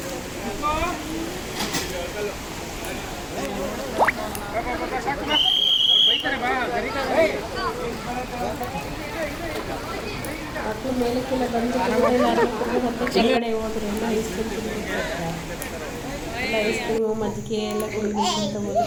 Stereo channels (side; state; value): both; identical; correlation 1.00